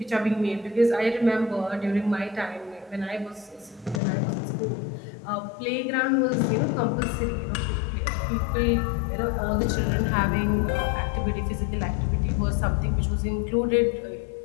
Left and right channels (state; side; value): drops out; right; at 4.0 s